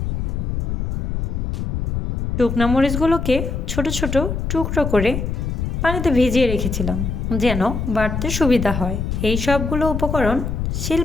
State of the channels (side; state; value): left; noise; rumble, 2 dB below the sound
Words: শুকনা মরিচগুলোকে ছোট ছোট টুকরো করে পানিতে ভিজিয়ে রেখেছিলাম যেন বাটতে সুবিধা হয়। এই সবগুলো উপকরণ